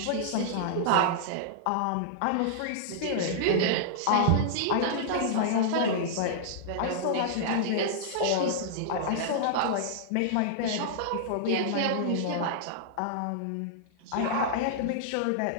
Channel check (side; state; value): both; different; correlation -0.01